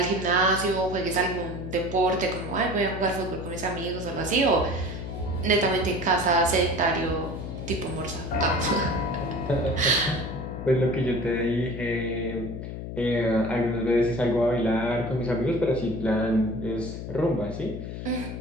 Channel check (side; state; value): left; noise; hum, 7 dB below the sound